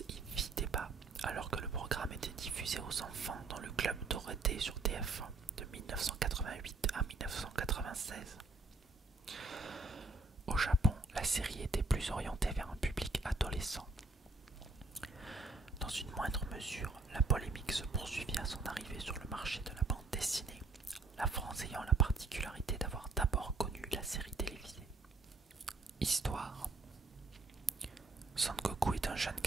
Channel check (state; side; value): quieter; left; 3.6 dB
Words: y fit débat, alors que le programme était diffusé aux enfants dans le club Dorothée sur TF1 de 1988 à 1996. Au Japon, la série était plus orientée vers un public adolescent. Dans une moindre mesure, la polémique se poursuivit à son arrivée sur le marché de la bande dessinée, la France ayant la particularité d'avoir d'abord connu la série télévisée. Histoire. Son Goku est un jeune